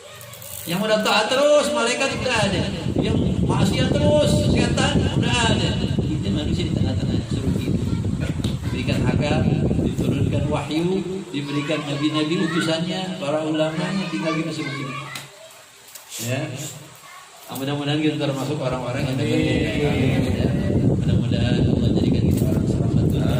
Yang udah taat terus, malaikat udah ada. Yang maksiat terus, setan udah ada. Kita manusia di tengah-tengah suruh pilih. Diberikan akal, diturunkan wahyu, diberikan nabi-nabi utusannya, para ulamanya, tinggal kita suruh pilih. Ya. Mudah-mudahan kita termasuk orang-orang yang dapat ya. Mudah-mudahan Allah jadikan kita orang selamat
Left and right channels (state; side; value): identical; both; correlation 1.00